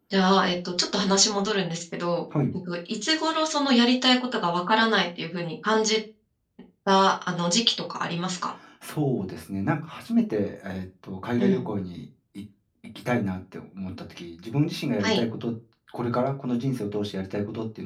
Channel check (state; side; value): identical; both; correlation 1.00